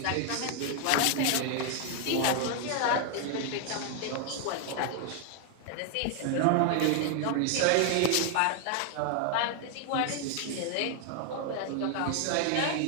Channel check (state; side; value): different; both; correlation 0.00